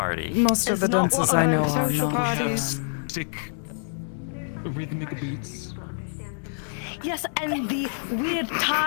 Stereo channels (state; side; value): silent; right; 61 dB below the other